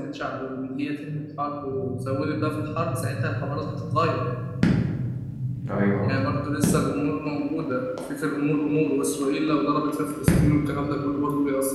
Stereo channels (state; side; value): identical; both; correlation 1.00